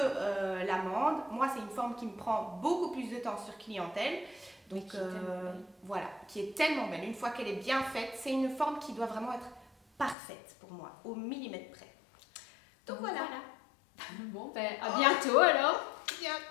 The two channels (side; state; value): right; drops out; at 10.2 s